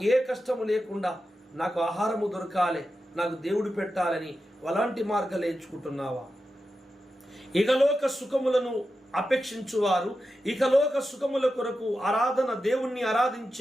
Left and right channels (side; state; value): both; normal; correlation 0.90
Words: ఏ కష్టము లేకుండా నాకు ఆహారము దొరకాలి, నాకు దేవుడు పెట్టాలని అలాంటి మార్గాలు ఎంచుకుంటున్నావా? ఇకలోక సుఖములను అపేక్షించువారు, ఇకలోక సుఖముల కొరకు దేవుణ్ణి